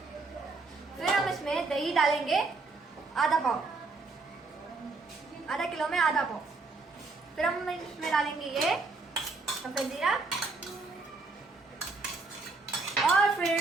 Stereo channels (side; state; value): left; quieter; 3.7 dB